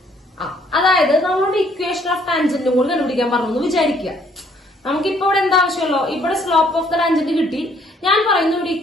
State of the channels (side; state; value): both; normal; correlation 0.64